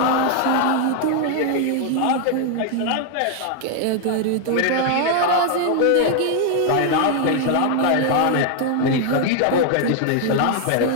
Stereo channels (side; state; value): both; different; correlation 0.00